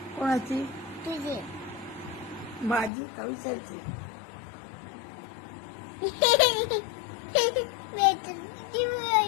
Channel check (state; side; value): drops out; right; at 2.9 s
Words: कोणाची? तुझी. माझी का विचारची?